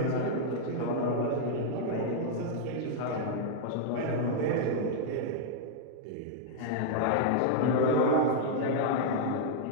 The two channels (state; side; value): different; both; correlation -0.01